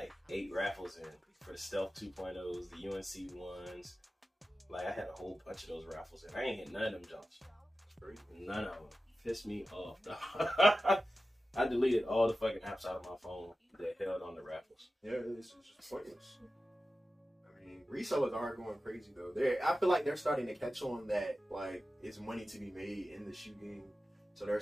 8 raffles in for the Stealth 2.0s, the UNC ones. Like I had a whole bunch of those raffles in. I ain't hit none of them jumps. None of them. Pissed me off. I deleted all the fucking apps out of my phone that held on the raffles. Yeah, it's just pointless. I mean, resellers are going crazy though. I feel like they're starting to catch on that like it's money to be made in the shoe game, so they're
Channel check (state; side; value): normal; both; correlation 0.94